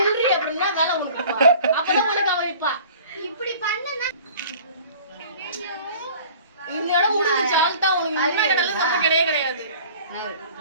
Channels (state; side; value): inverted; both; correlation -0.47